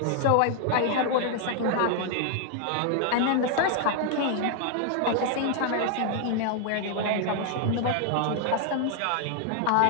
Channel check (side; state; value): both; different; correlation 0.00